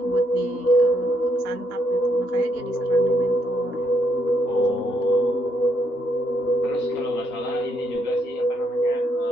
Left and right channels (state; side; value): normal; both; correlation 0.75